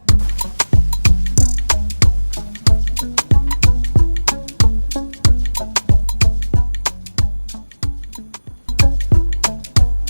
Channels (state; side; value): inverted; both; correlation -1.00